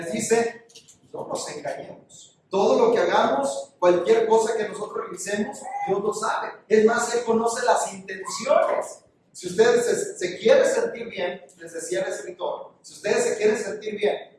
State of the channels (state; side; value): identical; both; correlation 1.00